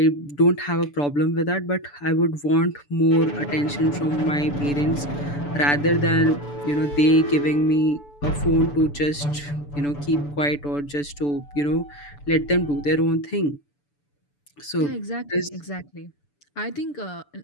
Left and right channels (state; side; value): late; right; 6.9 ms